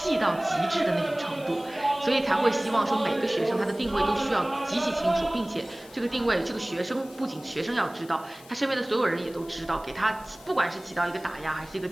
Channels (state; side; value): noise; left; hiss, 22 dB below the sound